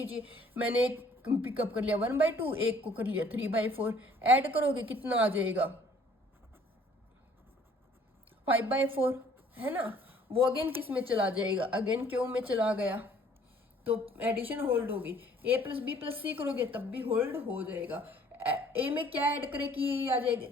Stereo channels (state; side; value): normal; both; correlation 0.57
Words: मैंने एक पिकअप कर लिया 1/2, एक को कर लिया 3/4, ऐड करोगे कितना आ जाएगा 5/4, है ना। वो अगेन किस में चला जाएगा, अगेन क्यू में चला गया, तो एडिशन होल्ड होगी। ए प्लस बी प्लस सी करोगे तब भी होल्ड हो जाएगा। ए में क्या ऐड करे कि ये आ जाएगा,